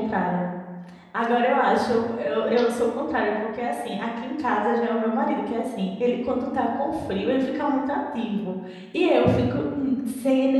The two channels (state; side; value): identical; both; correlation 1.00